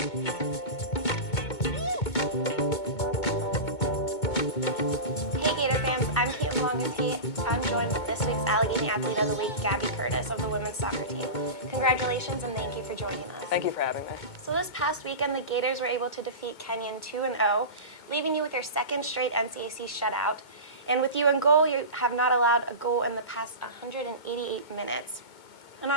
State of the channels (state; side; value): late; right; 2.2 ms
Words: joined with this week's Allegheny Athlete of the Week, Gabby Curtis of the women's soccer team. Congratulations and thank you for joining us. Thank you for having me. So this past weekend, the Gators were able to defeat Kenyon 2-0, leaving you with your second straight NCAC shutout. And with you in goal, you have not allowed a goal in the past 188 minutes. And